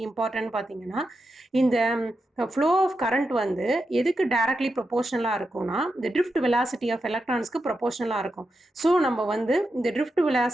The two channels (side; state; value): both; normal; correlation 0.87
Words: இம்பார்ட்டன்ட் பார்த்தீங்கன்னா, இந்த ஃப்ளோ ஆஃப் கரண்ட் வந்து எதுக்கு டைரக்ட்லி ப்ரொபோஷனலாக இருக்கும்னா இந்த ட்ரிஃப்ட் வெலாசிட்டி ஆஃப் எலக்ட்ரான்ஸ்க்கு ப்ரொபோஷனலாக இருக்கும். ஸோ நம்ம வந்து இந்த ட்ரிஃப்ட்